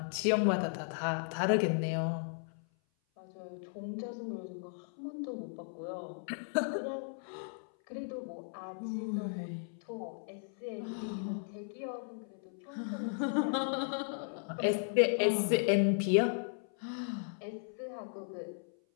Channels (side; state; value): right; silent; 54 dB below the other